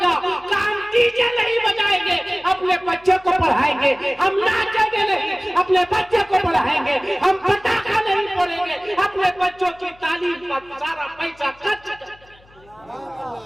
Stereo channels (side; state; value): left; noise; hum, 28 dB below the sound